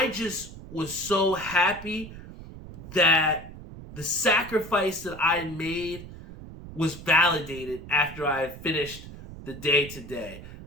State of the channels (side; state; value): right; noise; rumble, 14 dB below the sound